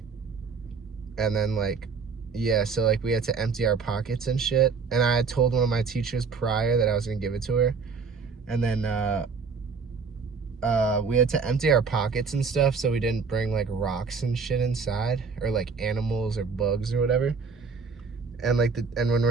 And then like, yeah, so like we had to empty our pockets and shit. And I had told one of my teachers prior that I was gonna give it to her. And then we had to empty our pockets and stuff so we didn't bring like rocks and shit inside, or like animals or bugs or whatever. And like and when we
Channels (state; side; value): quieter; left; 5.2 dB